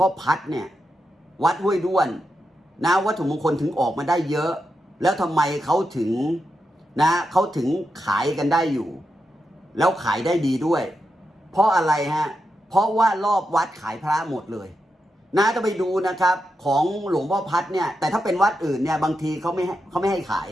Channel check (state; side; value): normal; both; correlation 0.87